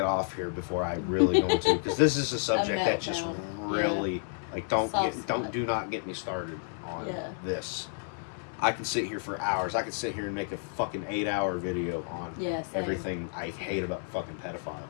off here before I really go into, because this is a subject that just meltdown. really, like, Soft spot. do not get me started on Yeah. this. I can sit here for hours. I could sit here and make a fucking 8-hour video on Yeah, same. everything I hate about fucking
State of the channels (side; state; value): right; silent; 57 dB below the other